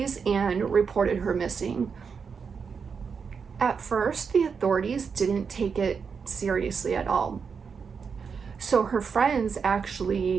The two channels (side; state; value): left; quieter; 5.9 dB